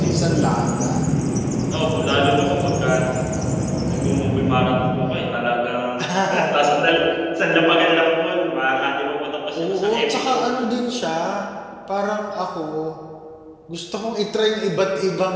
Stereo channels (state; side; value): identical; both; correlation 1.00